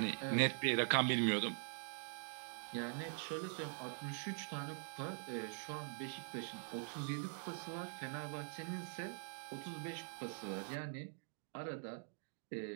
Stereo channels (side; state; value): left; silent; digital silence